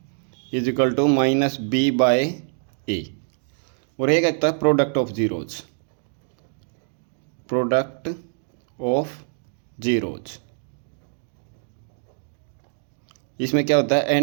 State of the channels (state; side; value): silent; left; 62 dB below the other